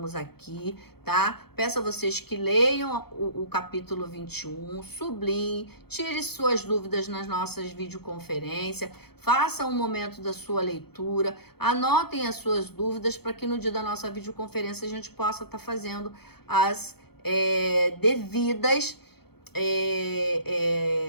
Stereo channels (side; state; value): right; late; 0.96 ms